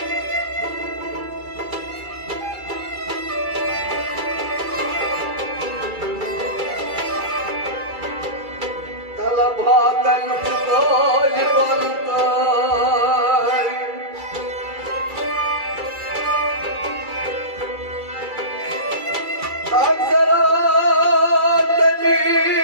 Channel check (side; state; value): left; late; 2.3 ms